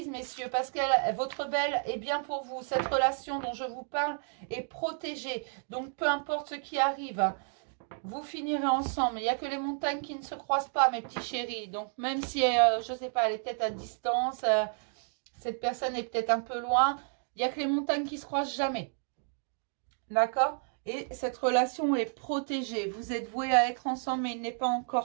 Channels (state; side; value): silent; left; 57 dB below the other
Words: messieurs, parce que votre belle est bien pour vous. Cette relation dont je vous parle est protégée. Donc, peu importe ce qui arrive, vous finirez ensemble. Il n'y a que les montagnes qui ne se croisent pas, mes petits chéris. Donc, même si, je ne sais pas, elle est peut-être à distance, cette personne est peut-être un peu loin, il n'y a que les montagnes qui se croisent jamais. D'accord? Et cette relation est protégée. Vous êtes voués à être ensemble, mais il n'est pas